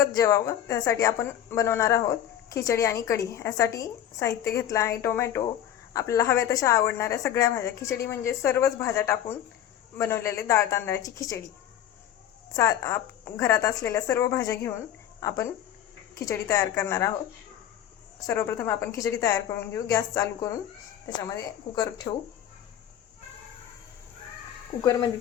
जेवावं त्यासाठी आपण बनवणार आहोत खिचडी आणि कढी. यासाठी साहित्य घेतलं आहे टोमॅटो, आपल्याला हव्या तशा आवडणाऱ्या सगळ्या भाज्या. खिचडी म्हणजे सर्वच भाज्या टाकून बनवलेले डाळ तांदळाची खिचडी. घरात असलेल्या सर्व भाज्या घेऊन आपण खिचडी तयार करणार आहोत. सर्वप्रथम आपण खिचडी तयार करून घेऊ. गॅस चालू करून त्याच्यामध्ये कुकर ठेवू. कुकरमध्ये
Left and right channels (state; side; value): quieter; right; 10.8 dB